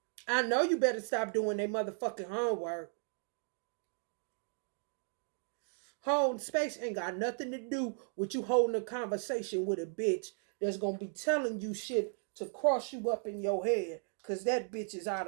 I know you better stop doing their motherfucking homework. Holding space ain't got nothing to do with you holding a conversation with a bitch that's gonna be telling you shit to cross you up in your head, cause that bitch is out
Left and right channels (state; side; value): silent; left; 54 dB below the other